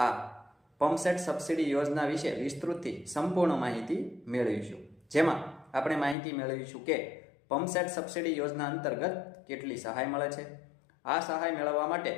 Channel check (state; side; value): drops out; right; at 6.2 s